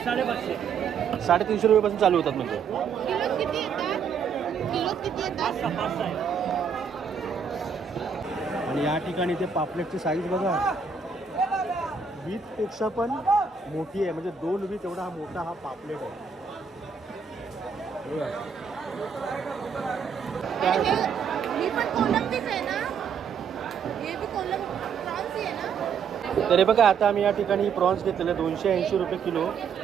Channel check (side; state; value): left; quieter; 6.2 dB